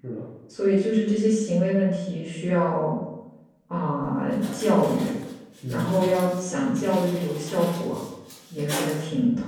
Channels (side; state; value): both; identical; correlation 1.00